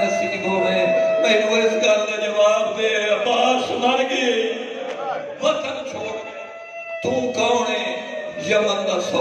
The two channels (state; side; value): identical; both; correlation 1.00